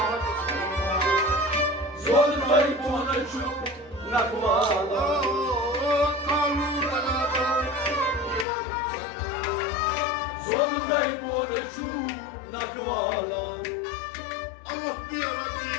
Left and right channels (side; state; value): right; drops out; at 8.5 s